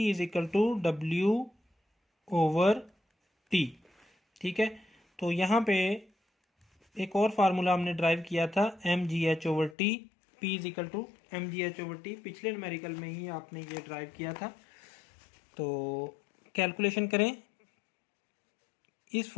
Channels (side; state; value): right; drops out; at 9.8 s